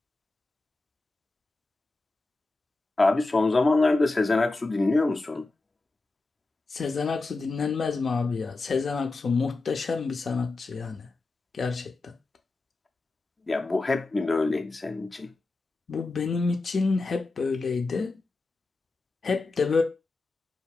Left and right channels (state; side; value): quieter; right; 3.4 dB